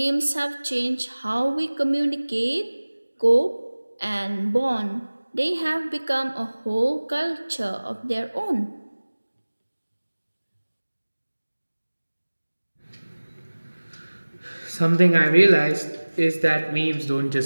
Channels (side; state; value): both; inverted; correlation -1.00